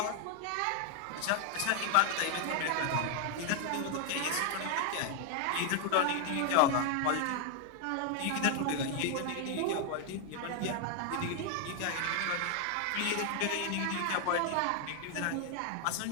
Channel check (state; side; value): different; both; correlation 0.00